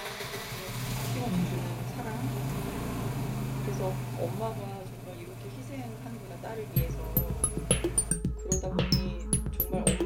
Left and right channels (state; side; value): identical; both; correlation 1.00